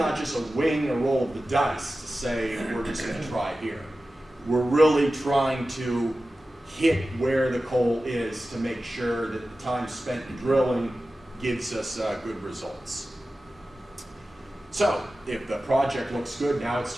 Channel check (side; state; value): both; normal; correlation 0.94